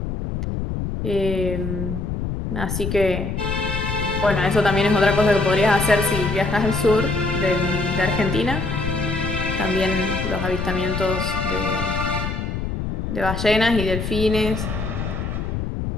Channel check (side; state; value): left; noise; rumble, 3 dB below the sound